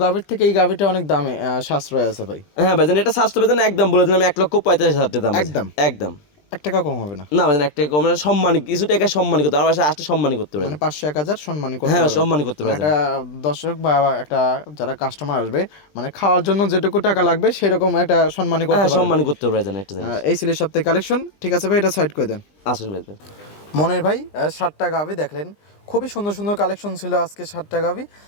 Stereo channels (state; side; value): late; right; 20 ms